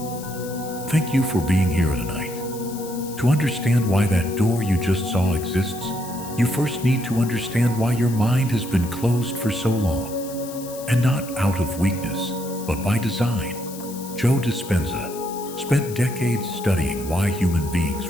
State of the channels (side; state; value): left; noise; hiss, 14 dB below the sound